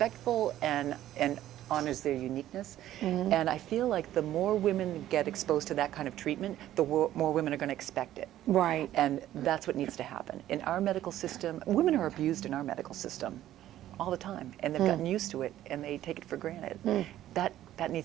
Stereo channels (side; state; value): left; quieter; 13.0 dB